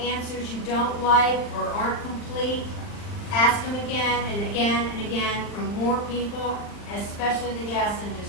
you don't like or aren't complete, ask them again and again and again from more people, especially the gas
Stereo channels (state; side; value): late; right; 39 ms